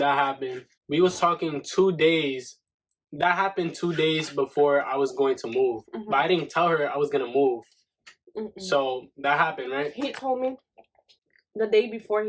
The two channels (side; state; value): both; identical; correlation 1.00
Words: happened. We was talking 2 days. That happened 2 days before I was going to move. But I didn't tell her I was gonna move. So that happened, right? He told me the day before